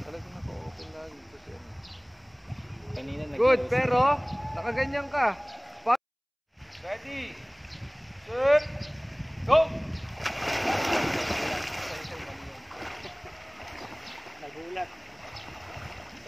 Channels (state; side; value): identical; both; correlation 1.00